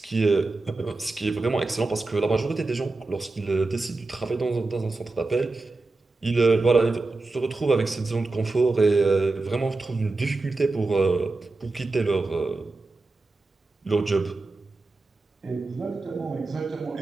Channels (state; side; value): quieter; left; 3.4 dB